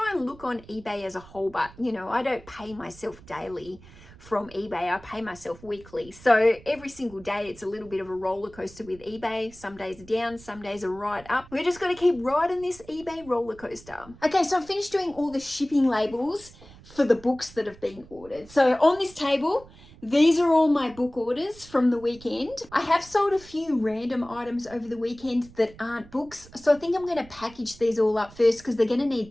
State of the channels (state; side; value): noise; right; rumble, 21 dB below the sound